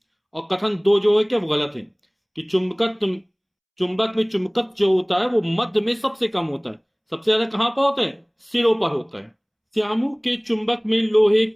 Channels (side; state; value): both; identical; correlation 1.00